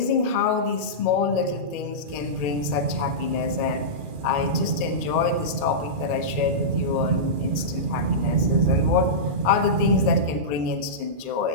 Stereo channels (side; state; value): left; late; 2.4 ms